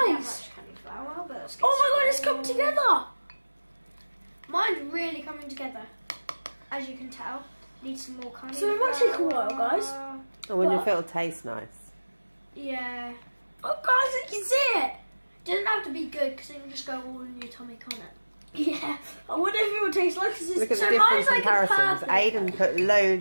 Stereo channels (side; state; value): both; inverted; correlation -1.00